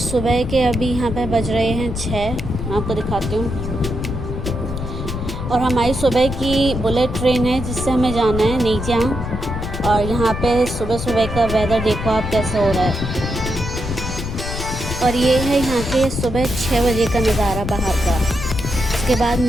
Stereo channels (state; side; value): noise; left; rumble, 6 dB below the sound